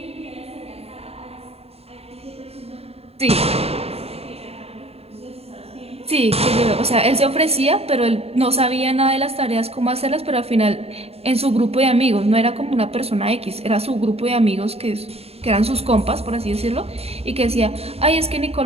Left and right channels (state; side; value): late; left; 0.29 ms